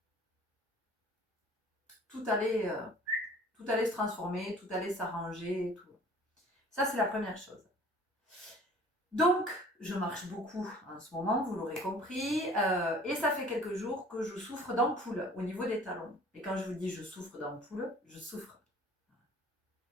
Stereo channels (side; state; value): both; normal; correlation 0.49